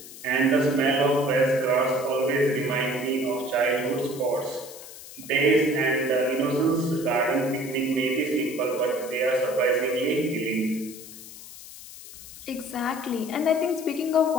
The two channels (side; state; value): left; noise; hiss, 15 dB below the sound